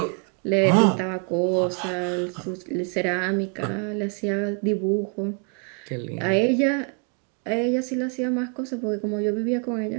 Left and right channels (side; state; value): left; quieter; 38.7 dB